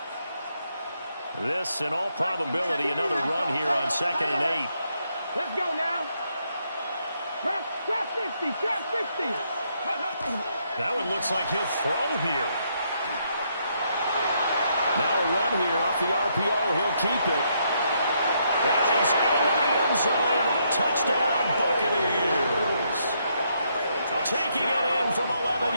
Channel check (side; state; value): both; inverted; correlation -0.75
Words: This, in all probability, another run here on 2nd and 8. Let's go now. Trap 50, trap 50. That one looks like he'll throw here. Now a run here off the RPO. He'll keep it. And he's into the end zone. Touchdown, Buccaneers. Taking it in from 11